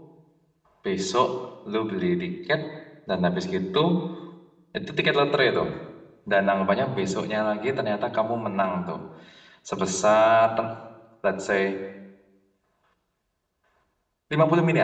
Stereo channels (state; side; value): identical; both; correlation 1.00